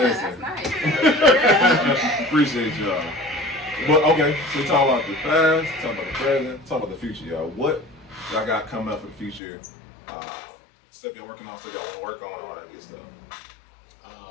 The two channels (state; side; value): drops out; right; at 9.4 s